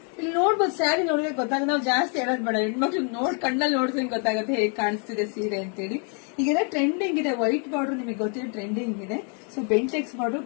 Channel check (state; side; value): quieter; right; 39.6 dB